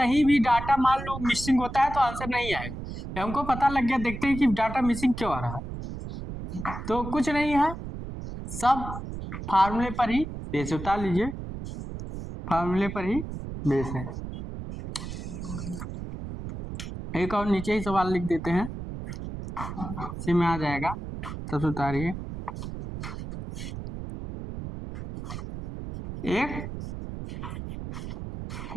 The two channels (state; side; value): noise; right; rumble, 8 dB below the sound